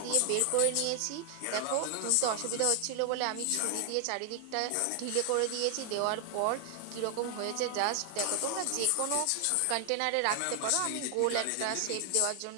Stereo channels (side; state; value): both; different; correlation 0.00